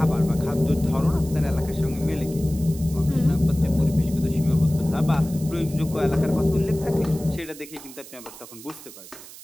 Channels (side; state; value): right; noise; hiss, 17 dB below the sound